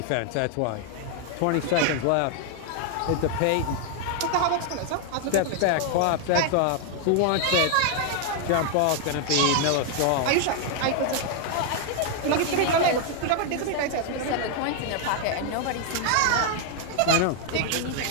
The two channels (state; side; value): different; both; correlation 0.00